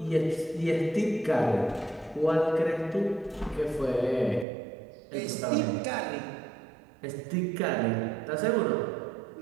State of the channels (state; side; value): drops out; left; at 4.5 s